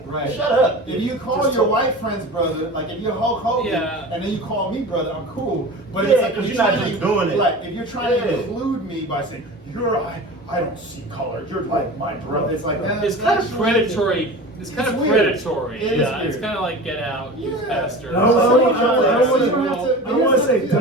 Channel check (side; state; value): both; normal; correlation 0.34